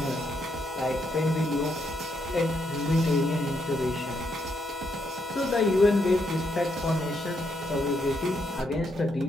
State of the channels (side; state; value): both; normal; correlation 0.78